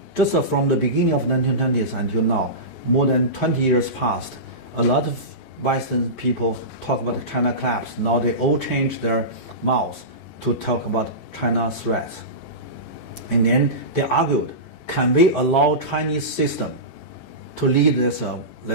just from the beginning of 1920s until now, more than 20 years passed, a lot of Western people talk about China collapse. Now they all change their mouths to talk about China threats. And then they argued, can we allow Chinese system to lead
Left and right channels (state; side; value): late; right; 14 ms